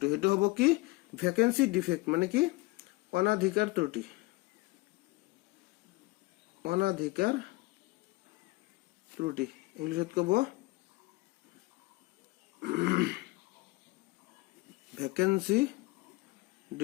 সেইটো হব কি? ভ্যাকেন্সি ডিফেক্ট মানে কি? অনাধিকার ত্রুটি। অনাধিকার ত্রুটি ইংলিশত কব ভ্যাকেন্সি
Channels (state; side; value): quieter; right; 22.8 dB